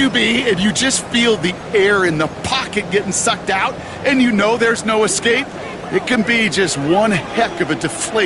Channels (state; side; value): identical; both; correlation 1.00